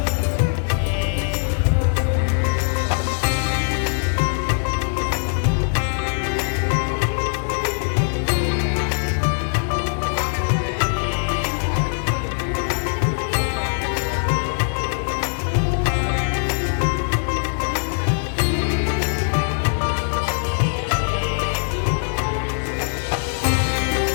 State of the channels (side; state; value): right; silent; digital silence